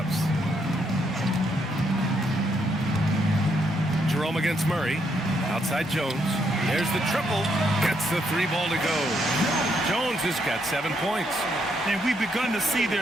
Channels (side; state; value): both; normal; correlation 0.76